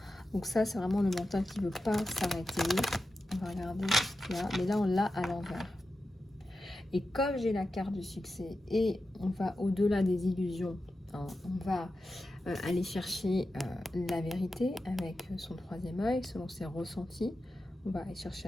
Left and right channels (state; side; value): normal; both; correlation 0.91